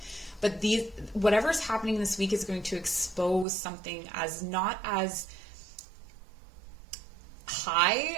But whatever's happening this week is going to expose something as not as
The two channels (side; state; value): left; drops out; at 3.5 s